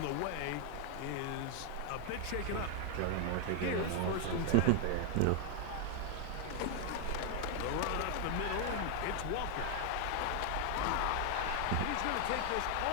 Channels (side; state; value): both; different; correlation 0.00